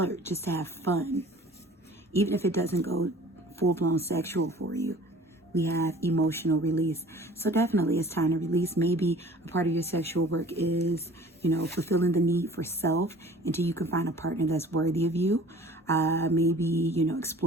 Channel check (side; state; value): both; normal; correlation 0.48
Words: just to have fun, even if it doesn't go full-blown sexual for you. We have emotional release. So definitely it's time to release. Maybe a part of your sexual work is, fulfilling the need for self until you can find a partner that's worthy of you. Maybe,